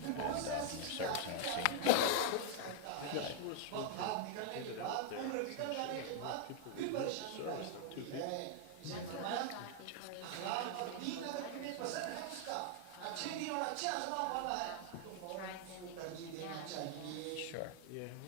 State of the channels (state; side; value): different; both; correlation -0.01